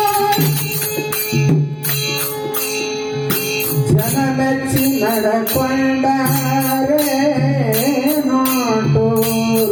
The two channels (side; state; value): both; identical; correlation 1.00